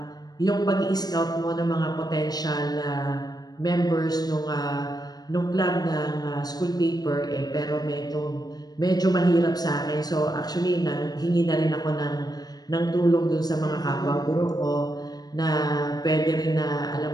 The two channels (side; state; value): right; late; 0.19 ms